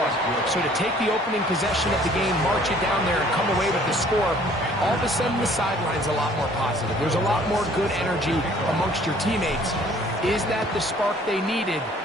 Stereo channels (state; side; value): normal; both; correlation 0.56